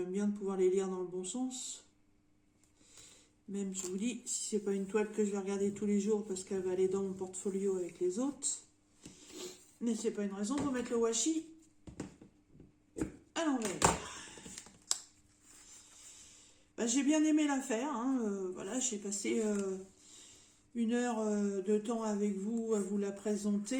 bien de pouvoir les lire dans le bon sens. Même, je vous dis, si c'est pas une toile que je vais regarder tous les jours parce qu'elle va aller dans mon portfolio avec les autres. Mais c'est pas une raison pour mettre le washi à l'envers. Bah, j'ai bien aimé l'affaire. Hein, voilà, j'ai passé 1 heure de temps avec vous à vous la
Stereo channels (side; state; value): both; identical; correlation 1.00